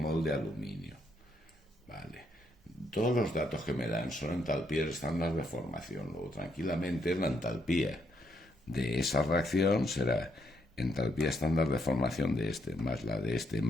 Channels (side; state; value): both; normal; correlation 0.76